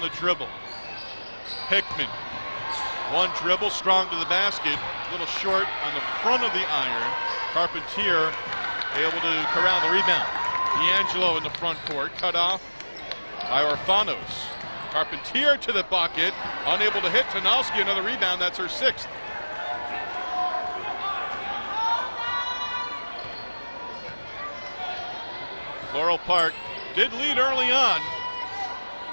the dribble. Hickman, 1 dribble, strong to the basket, a little short on the front of the iron. Carpentier able to corral the rebound. D'Angelo in the front court, cut off by Orfanos. Carpentier to the bucket, unable to hit. Tanowski, another rebound, that's her 6th. Floral Park did lead early on.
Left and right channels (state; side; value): inverted; both; correlation -1.00